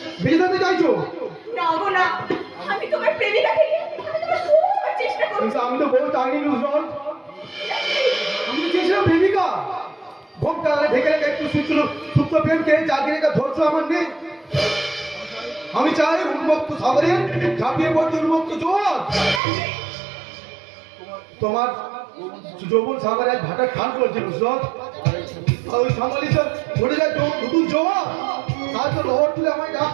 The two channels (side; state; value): left; drops out; at 19.4 s